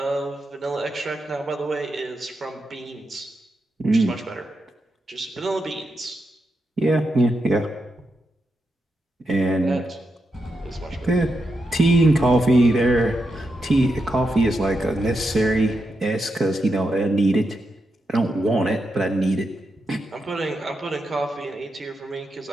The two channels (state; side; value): normal; both; correlation 0.86